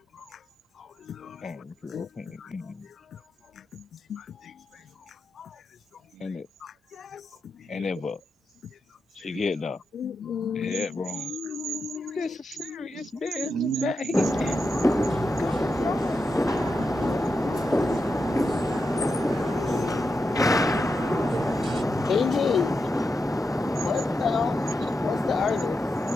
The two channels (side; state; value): both; normal; correlation 0.87